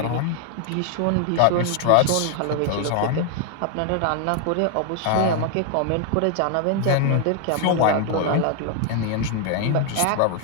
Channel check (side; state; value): both; different; correlation 0.00